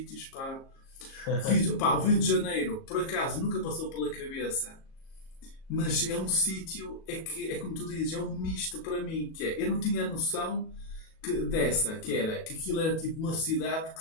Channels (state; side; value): late; right; 37 ms